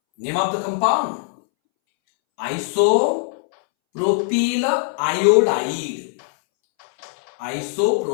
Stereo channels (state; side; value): silent; right; 64 dB below the other